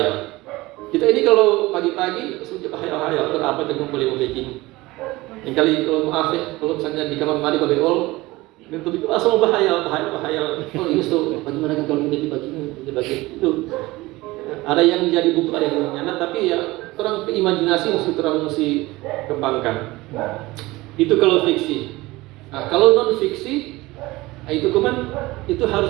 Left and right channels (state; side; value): quieter; left; 20.1 dB